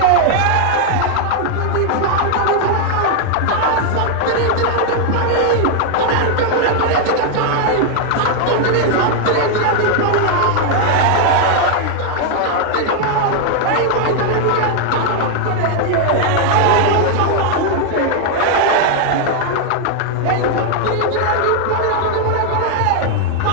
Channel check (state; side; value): different; both; correlation 0.00